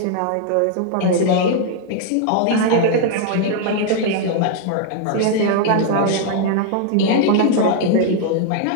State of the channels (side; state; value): both; different; correlation 0.00